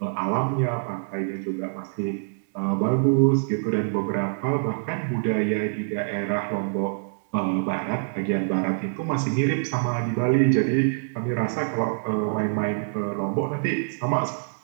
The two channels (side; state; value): left; silent; digital silence